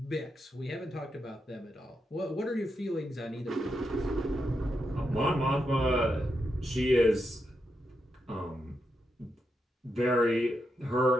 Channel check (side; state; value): both; normal; correlation 0.84